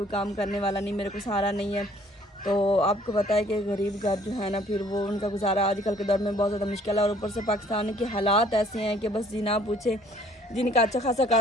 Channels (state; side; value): normal; both; correlation 0.58